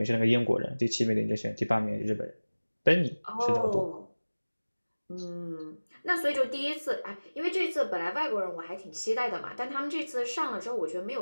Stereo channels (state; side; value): inverted; both; correlation -1.00